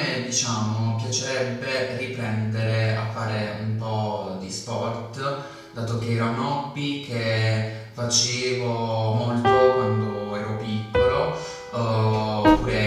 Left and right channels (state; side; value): identical; both; correlation 1.00